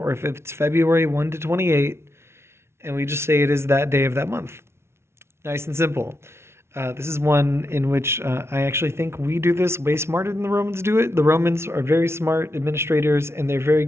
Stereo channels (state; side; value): late; left; 0.12 ms